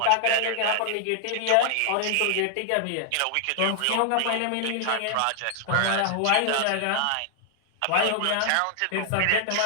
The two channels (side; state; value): both; different; correlation 0.00